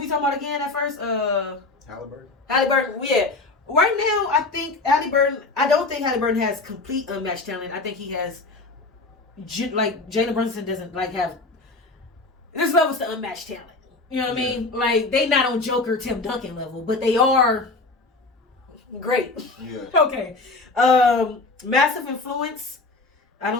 talking about again at first? Halliburton. Halliburton, yeah. Right now, I think Halliburton, I don't think Halliburton has complete unmatched talent. I think he has, like, Jalen Brunson doesn't, like, have, there's levels to unmatched talent. You know what I mean? Like, they not on Joker Tim Duncan level, but they are great. Yeah. Okay. Massive influence. I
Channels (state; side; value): quieter; right; 3.4 dB